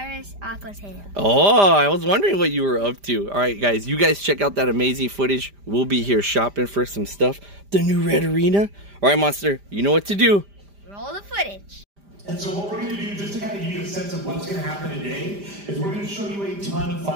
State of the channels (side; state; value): left; late; 5.0 ms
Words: Aqua's Hail. Oh, I was wondering what you were up to. All right, guys, you guys check out that amazing footage. We'll be here shopping for some stuff. The new Red Arena. All right, Monster, you know what to do. Roll the footage. And so what we're going to do, just to kind of give you a sense of what's going to happen today, is we're going to show you a ton of